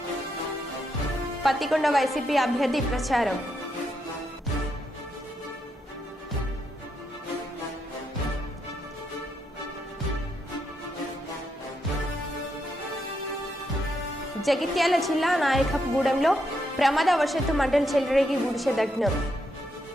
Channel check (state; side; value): normal; both; correlation 0.80